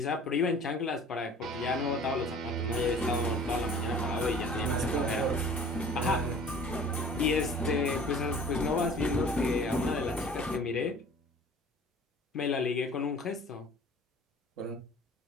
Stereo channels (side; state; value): both; normal; correlation 0.47